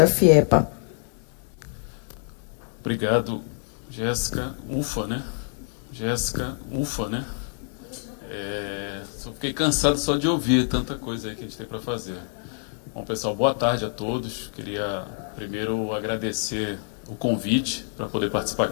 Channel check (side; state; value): right; silent; 61 dB below the other